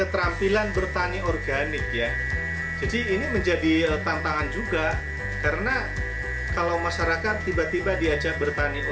bertani organik ya. Jadi ini menjadi tantangan juga, karena kalau masyarakat tiba-tiba diajak bertani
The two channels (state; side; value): identical; both; correlation 1.00